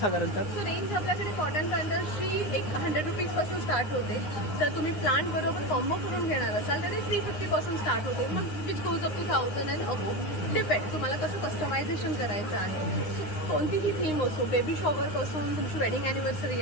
सो रेंज आपल्याकडे कॉटन प्लांटर्सची 100 रुपीज पासून स्टार्ट होते. जर तुम्ही प्लांट बरोबर कॉम्बो करून घेणार असाल तर ते 350 पासून स्टार्ट होते. मग which goes up to 1000 and above. Depend तुम्हाला कसं कस्टमायझेशन करायचं आहे. कोणतीही थीम असो, बेबी शॉवर पासून तुमची वेडिंग अॅनिव्हर्सरी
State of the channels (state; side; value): late; right; 9.7 ms